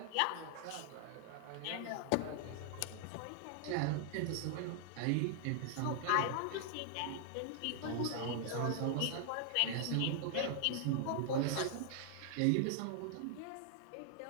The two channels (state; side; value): different; both; correlation 0.00